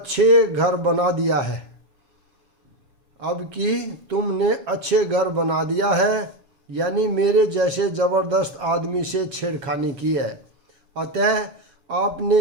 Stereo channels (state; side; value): late; left; 7.3 ms